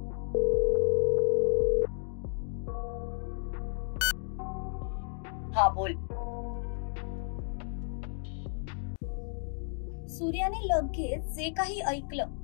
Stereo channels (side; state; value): right; silent; 56 dB below the other